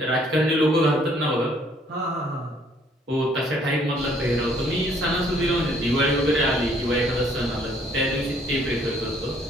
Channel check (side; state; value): both; normal; correlation 0.63